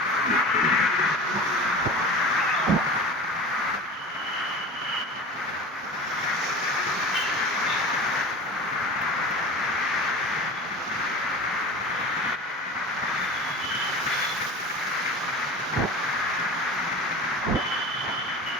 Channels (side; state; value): both; normal; correlation 0.35